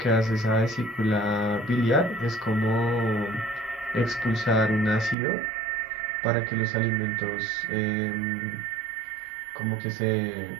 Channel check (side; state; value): left; drops out; at 5.2 s